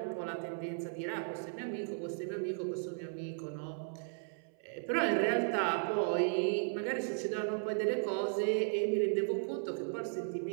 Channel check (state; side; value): silent; left; 54 dB below the other